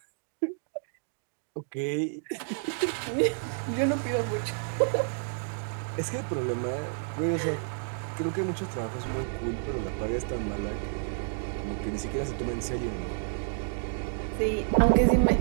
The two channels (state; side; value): silent; left; digital silence